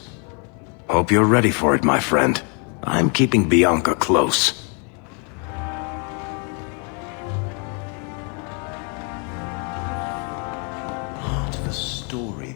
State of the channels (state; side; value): quieter; right; 37.2 dB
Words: Hope you're ready for it, my friend. I'm keeping Bianca close.